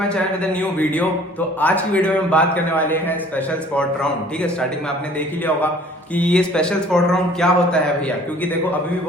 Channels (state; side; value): normal; both; correlation 0.53